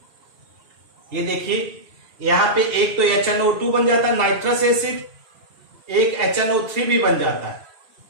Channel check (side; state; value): left; late; 2.7 ms